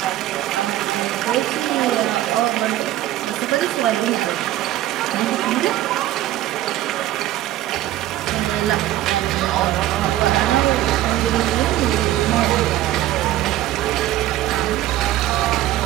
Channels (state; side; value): quieter; left; 14.5 dB